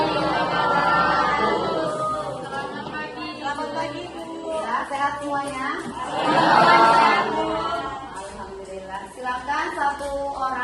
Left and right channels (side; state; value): both; identical; correlation 1.00